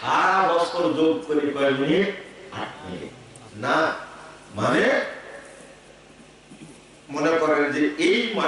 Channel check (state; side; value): identical; both; correlation 1.00